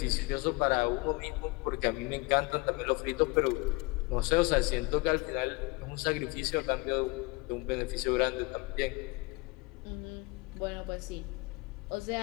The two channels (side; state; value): right; quieter; 24.9 dB